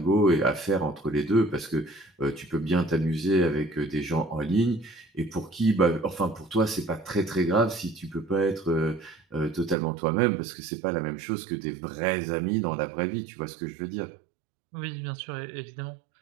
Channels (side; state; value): left; drops out; at 9.8 s